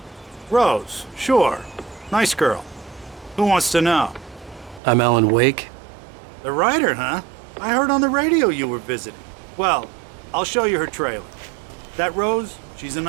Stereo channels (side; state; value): left; drops out; at 4.8 s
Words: Rose, sure. Nice girl. Who wants to know? I'm Alan Wake. The writer, huh? I heard on the radio you were visiting. Well, I'll show you her trailer. That Rose, she's a